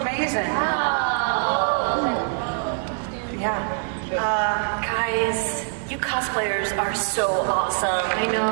Yeah. Guys, you cosplayers are so awesome. I know.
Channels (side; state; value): left; silent; digital silence